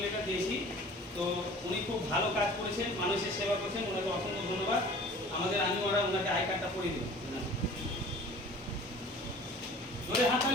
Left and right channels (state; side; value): normal; both; correlation 0.46